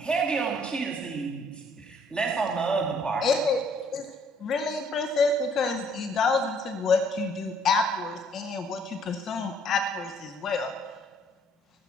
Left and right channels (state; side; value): normal; both; correlation 0.63